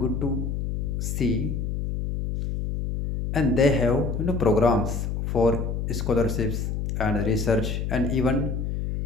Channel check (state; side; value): noise; left; hum, 2 dB below the sound